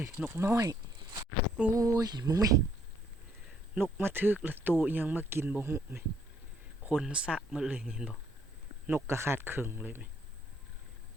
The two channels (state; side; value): normal; both; correlation 0.68